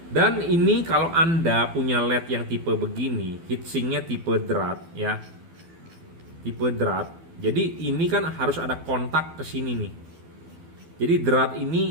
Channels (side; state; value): left; late; 12 ms